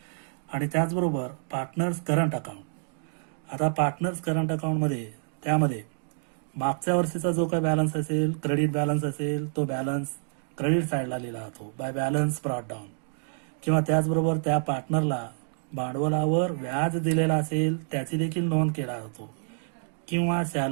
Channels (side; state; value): left; silent; digital silence